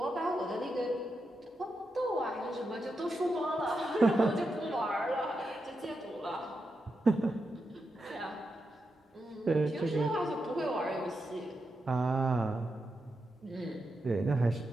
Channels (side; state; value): both; normal; correlation 0.86